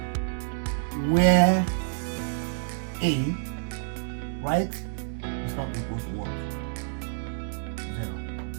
Where a, right, is not equal to what? 0.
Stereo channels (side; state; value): left; silent; digital silence